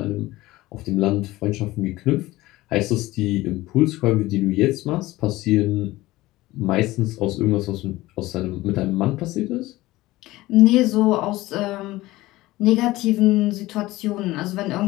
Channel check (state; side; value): quieter; right; 18.2 dB